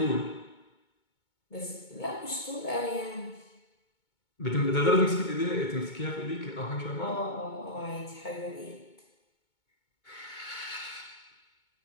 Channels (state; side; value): late; right; 2.2 ms